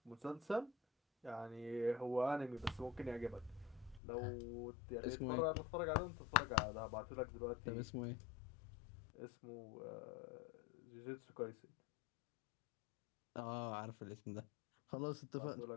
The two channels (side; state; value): right; drops out; at 4.0 s